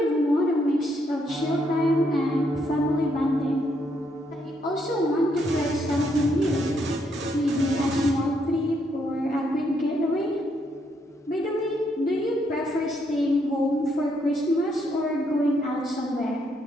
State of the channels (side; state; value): both; normal; correlation 0.75